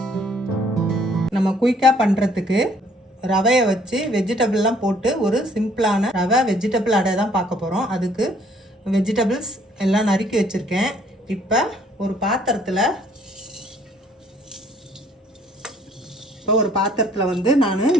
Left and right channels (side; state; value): both; normal; correlation 0.62